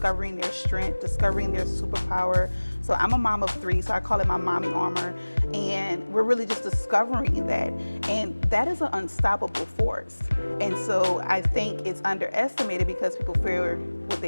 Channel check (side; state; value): both; inverted; correlation -1.00